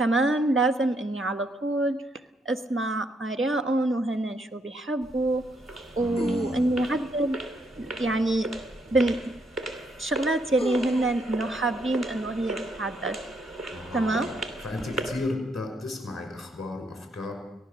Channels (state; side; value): normal; both; correlation 0.74